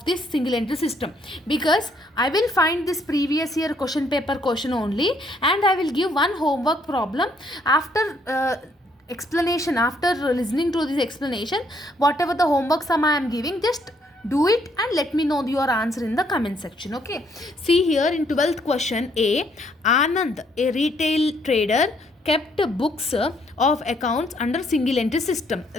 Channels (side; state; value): both; normal; correlation 0.69